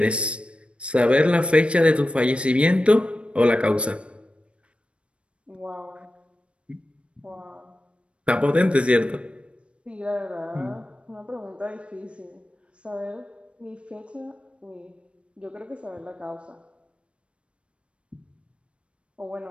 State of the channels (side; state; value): left; late; 0.059 ms